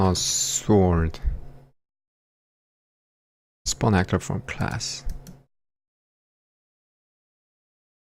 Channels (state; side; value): identical; both; correlation 1.00